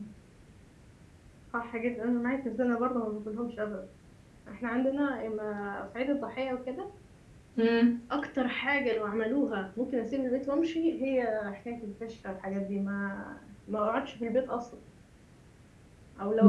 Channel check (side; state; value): both; identical; correlation 1.00